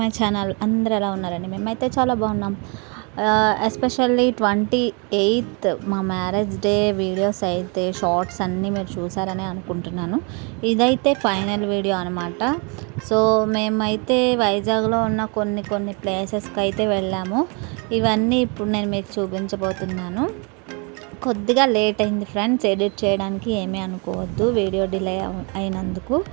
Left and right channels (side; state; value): left; quieter; 33.2 dB